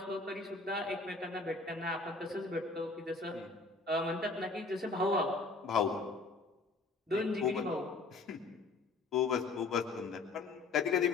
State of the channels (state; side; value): quieter; right; 3.7 dB